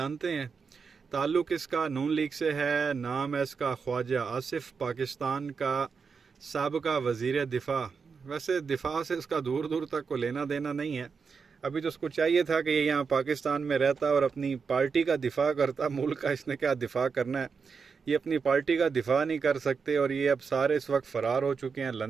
हैं। ताल्लुक़ इसका नून लीग से है। नाम है इसका ख्वाजा आसिफ, पाकिस्तान का साबका वज़ीर दिफ़ा। वैसे दिफ़ा से इसका दूर दूर तक को लेना देना नहीं है। अभी तो उसको चाहिए था कि ये यहाँ पाकिस्तान में रहता और अपनी पार्टी का दिफ़ा करता। मुल्क का इसने क्या दिफ़ा करना है, ये अपनी पार्टी का दिफ़ा नहीं कर सकते और ये अब सारे इस वक्त फ़रार हो चुके हैं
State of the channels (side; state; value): left; quieter; 5.5 dB